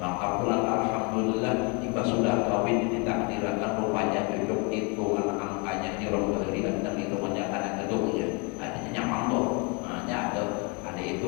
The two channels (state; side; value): quieter; right; 31.6 dB